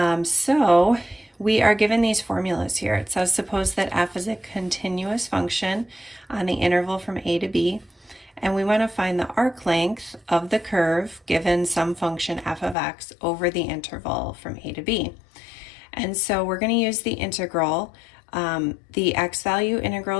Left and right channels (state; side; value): drops out; right; at 12.8 s